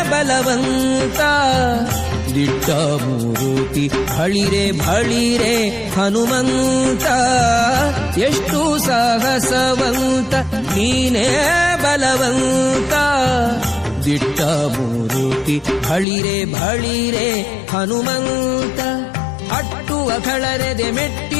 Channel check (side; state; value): right; drops out; at 16.1 s